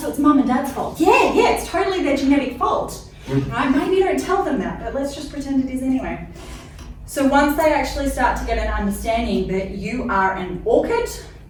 so it's mum and dad's fault. Yeah, it's totally their genetic fault. Right? Maybe you don't tell them that, but let's just pretend it is anyway. So once they actually start to get an understanding that you are an orchid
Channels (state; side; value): identical; both; correlation 1.00